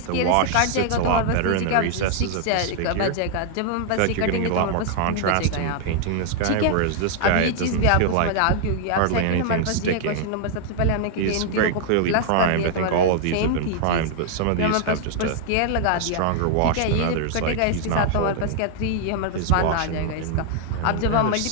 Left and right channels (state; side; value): different; both; correlation 0.00